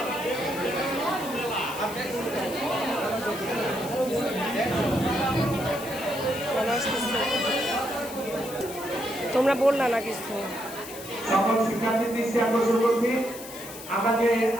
তোমরা বললা না কিছু সকল শিক্ষার্থীর দৃষ্টি আকর্ষণ করছি আমরা যে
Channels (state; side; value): noise; left; hiss, 13 dB below the sound